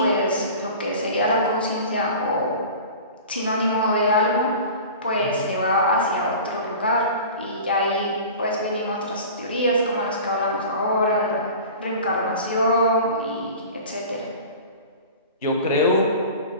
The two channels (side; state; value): both; inverted; correlation -0.38